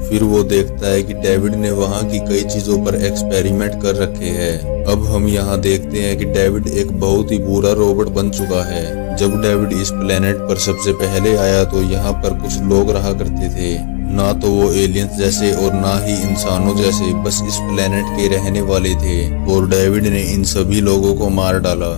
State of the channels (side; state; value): right; silent; digital silence